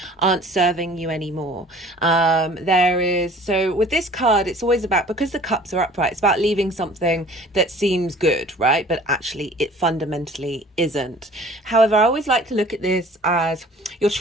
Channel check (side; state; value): both; normal; correlation 0.49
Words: aren't serving you anymore. So with this card, it's always about, because the cups are upright, it's about leaving something that seems good, right? But actually it fundamentally isn't. However, I always like to look at this as your